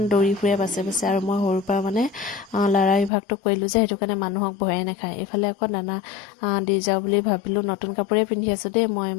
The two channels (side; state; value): right; drops out; at 3.1 s